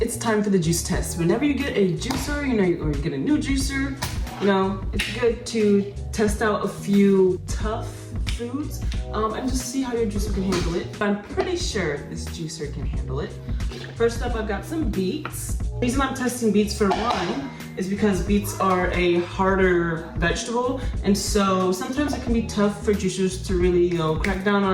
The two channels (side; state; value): both; identical; correlation 1.00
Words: it's time for the juice test. Whenever you get a juicer, you know, or you get a new juicer, you know, it's good to test out a few tough foods and just see how your juicer can handle it. I'm pretty sure this juicer can handle it. First up, I've got some beets. The reason I'm testing beets for one is because beets are a harder vegetable, and so sometimes it can be tough for juicers to really, you know, crack down